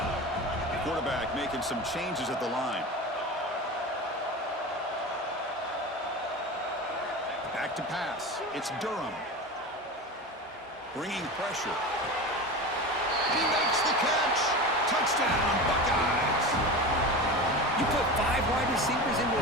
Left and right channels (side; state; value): both; normal; correlation 0.28